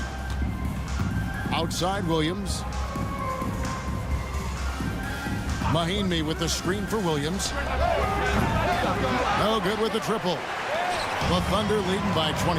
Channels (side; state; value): both; identical; correlation 1.00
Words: Outside Williams. Mahinmi with the screen for Williams. No good with the triple. The Thunder leading by